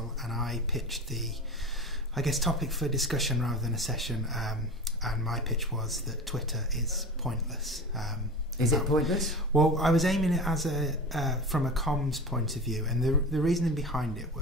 and I pitched the, topic for discussion rather than a session. And my pitch was that Twitter is pointless. Is it pointless? Well, I was aiming it as from a comms point of view, and the reasoning behind it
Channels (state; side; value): normal; both; correlation 0.31